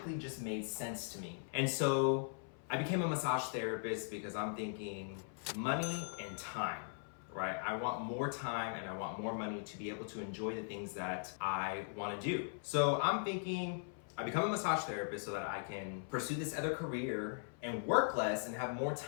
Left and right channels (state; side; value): silent; right; 51 dB below the other